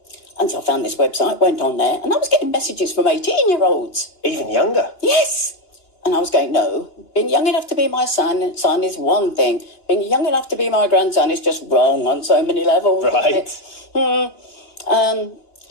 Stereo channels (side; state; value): right; late; 2.9 ms